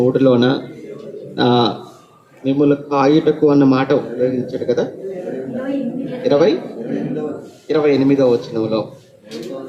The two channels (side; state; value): both; identical; correlation 1.00